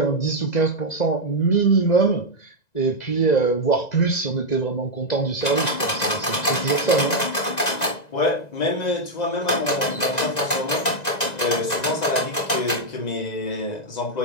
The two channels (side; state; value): right; late; 2.0 ms